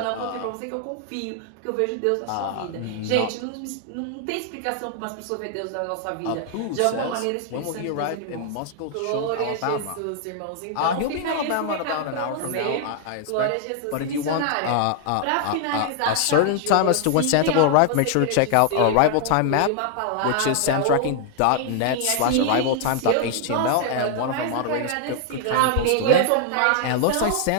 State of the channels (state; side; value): different; both; correlation 0.00